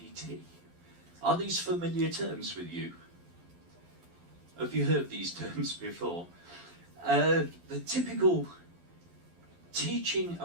Are these familiar terms with you? Have you heard these terms before? The typical teaching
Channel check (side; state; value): left; late; 12 ms